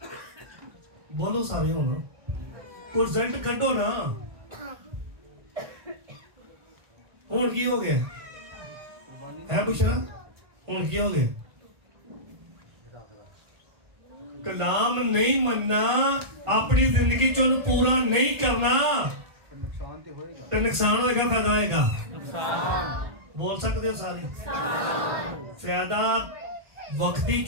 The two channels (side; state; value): left; late; 1.8 ms